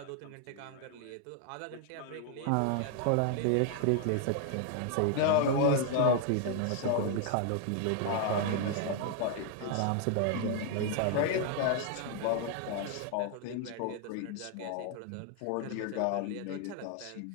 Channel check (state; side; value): different; both; correlation 0.00